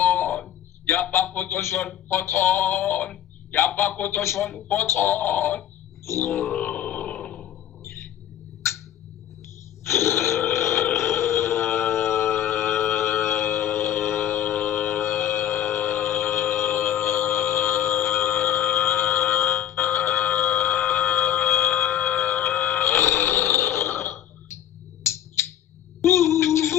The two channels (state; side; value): quieter; right; 11.0 dB